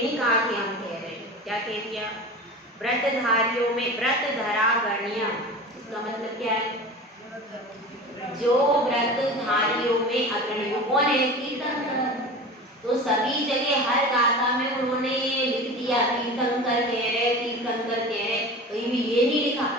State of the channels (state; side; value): normal; both; correlation 0.34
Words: नहीं कहा कि हम कह रहे हैं, क्या कह दिया, व्रतधारियों में व्रतधरागण्य, इसका मतलब क्या है, जो व्रतधारियों में अग्रणी कौन है, तीर्थंकर। तो सभी जगह हर गाथा में उन्होंने ये लिख दिया तीर्थंकर कह रहे, तीर्थंकर कह रहे, कहीं भी ये नहीं लिखा